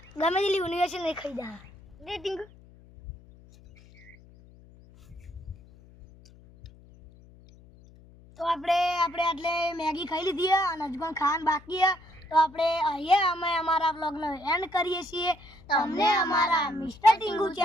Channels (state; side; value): noise; left; hum, 24 dB below the sound